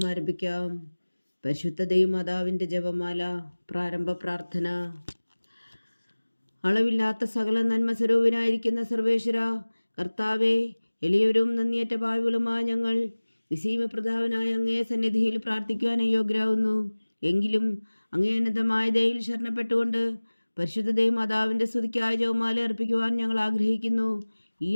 ആരംഭിക്കാം. പരിശുദ്ധ ദൈവമാതാവിൻ്റെ ജപമാല. പ്രാരംഭ പ്രാർത്ഥന. അളവില്ലാത്ത സകല നന്മ സ്വരൂപനായിരിക്കുന്ന സർവേശ്വര കർത്താവേ, എളിയവരും നന്ദിയേറ്റ പാവികളുമായ ഞങ്ങൾ നിസീമപ്രതാപനായ അങ്ങേ സന്നിധിയിൽ പ്രാർത്ഥിക്കുവാൻ അയോഗ്യരാകുന്നു. എങ്കിലും അങ്ങേ അനന്തമായ ദയയിൽ ശരണപ്പെട്ടുകൊണ്ട് പരിശുദ്ധ ദൈവമാതാവിൻ്റെ സ്തുതിക്കായ ജപമാല അർപ്പിക്കുവാൻ ഞങ്ങൾ ആഗ്രഹിക്കുന്നു. ഈ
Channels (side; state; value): both; inverted; correlation -1.00